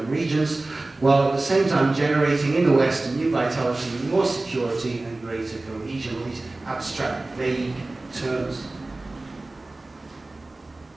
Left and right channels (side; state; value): left; quieter; 3.0 dB